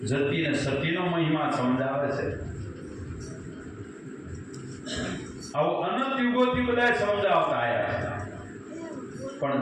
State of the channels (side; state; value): both; identical; correlation 1.00